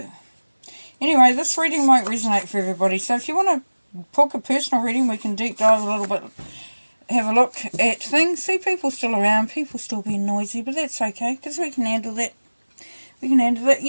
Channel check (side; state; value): both; inverted; correlation -1.00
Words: anyway, this reading might resonate for everybody. So if you want to book a personal reading, we can deep dive a little bit, have a look at things. See, people still around, people still being noisy, but that's okay, because we can handle that. We can handle that.